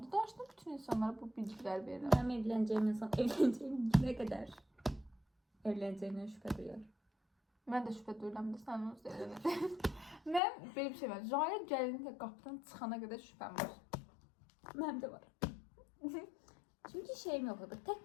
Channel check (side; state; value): right; drops out; at 10.4 s